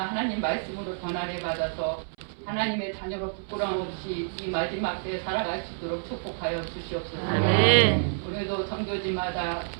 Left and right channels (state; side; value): silent; left; 59 dB below the other